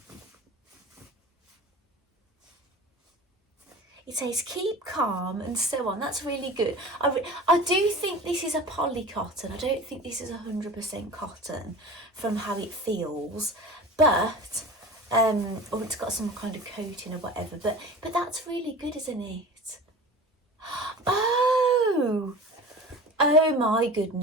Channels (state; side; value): normal; both; correlation 0.37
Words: It says keep calm and so on. That's really good. I do think this is a poly cotton. I don't think this is 100% cotton from how it feels, but or it's got some kind of coating or whatever. But that's really good, isn't it? Oh my